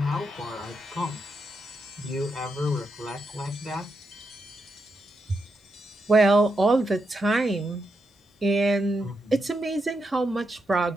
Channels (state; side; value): normal; both; correlation 0.83